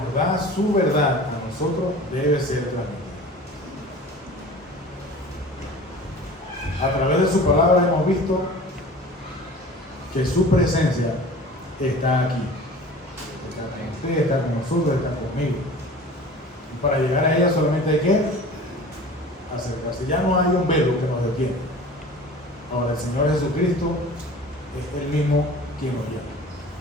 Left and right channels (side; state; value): both; normal; correlation 0.41